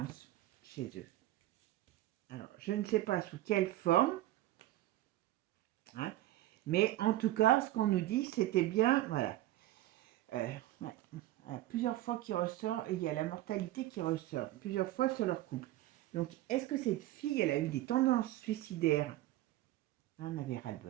chez eux. Alors, je ne sais pas sous quelle forme, hein, mais en tout cas, ce qu'on nous dit, c'était bien, voilà. Ouais, plusieurs fois qui ressort, et il y a la mortalité qui ressort, plusieurs fois sur leur couple. Donc, est-ce que cette fille, elle a eu des tendances suicidaires? On avait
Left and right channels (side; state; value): left; quieter; 15.4 dB